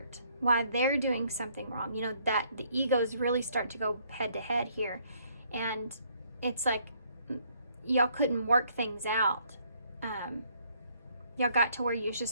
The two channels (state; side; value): inverted; both; correlation -0.66